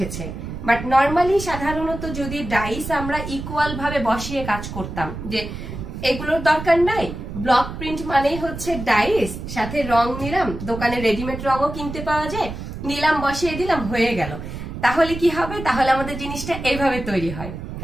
বাট নর্মালি সাধারণত যদি ডাইস আমরা ইকুয়াল ভাবে বসিয়ে কাজ করতাম, যে এগুলোর দরকার নাই, ব্লক প্রিন্ট মানেই হচ্ছে ডাইস, সাথে রং নিলাম, দোকানে রেডিমেড রঙও কিনতে পাওয়া যায়, নিলাম বসিয়ে দিলাম হয়ে গেল, তাহলে কি হবে? তাহলে আমাদের জিনিসটা এইভাবে তৈরি হয়,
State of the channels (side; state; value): right; noise; rumble, 8 dB below the sound